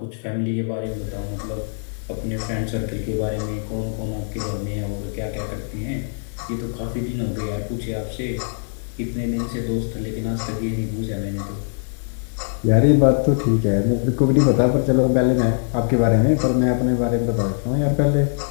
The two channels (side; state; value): right; silent; digital silence